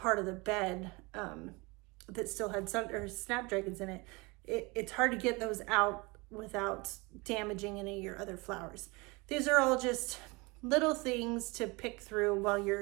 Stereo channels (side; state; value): left; quieter; 26.3 dB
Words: of the bed that still had snapdragons in it. It's hard to get those out without damaging any of your other flowers. These are all just little things to pick through while